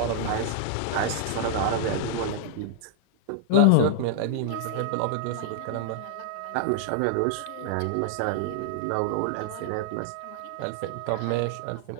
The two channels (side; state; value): both; different; correlation -0.01